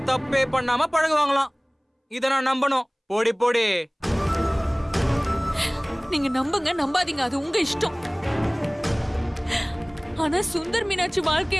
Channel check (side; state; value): both; identical; correlation 1.00